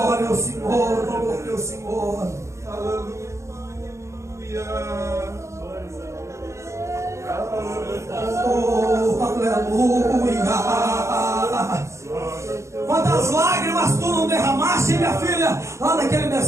ao Senhor. Glória ao Senhor. Aleluia. Oh, aleluia. Quantas lágrimas tu não derramaste, minha filha, lá naquele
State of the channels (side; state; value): left; late; 0.14 ms